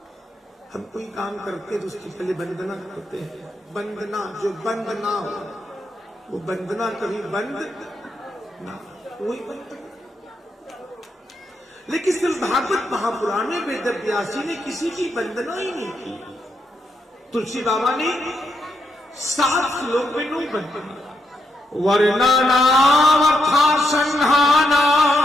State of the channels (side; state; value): both; normal; correlation 0.80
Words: हम कोई काम करते तो उसकी पहले वंदना करते हैं, वंदना जो बंद ना हो वो वंदना कभी बंद ना, वही वंदना। लेकिन सिर्फ भागवत महापुराण में वेद व्यासी ने किसी की वंदना ही नहीं की। तुलसी बाबा ने 7 श्लोक में 9 वंदना, वर्णनावथा संहाना